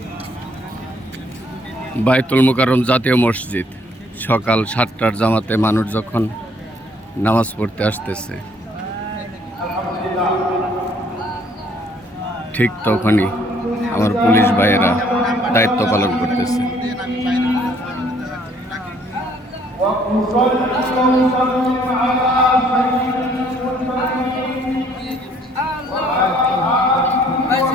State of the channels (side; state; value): both; normal; correlation 0.63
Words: মুকাররম জাতীয় মসজিদ, সকাল 7টার জামাতে মানুষ যখন নামাজ পড়তে আসতেছে, ঠিক তখনই আমার পুলিশ ভাইয়েরা দায়িত্ব পালন করতেছে।